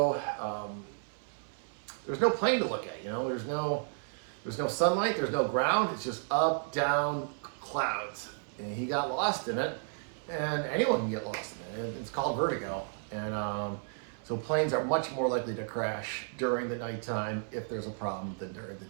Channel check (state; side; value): silent; left; 56 dB below the other